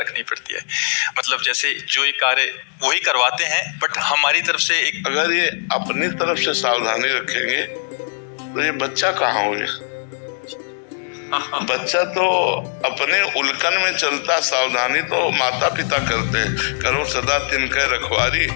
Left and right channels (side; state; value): right; silent; digital silence